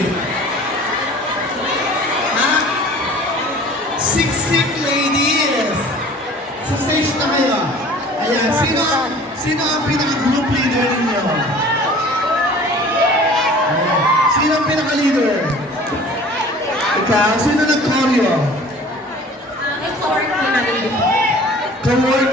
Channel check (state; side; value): normal; both; correlation 0.46